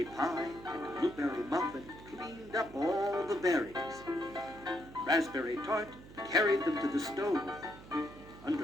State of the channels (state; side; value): noise; right; hum, 18 dB below the sound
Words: Pie and Blueberry Muffin cleaned up all the berries. Raspberry Tart carried them to the stove.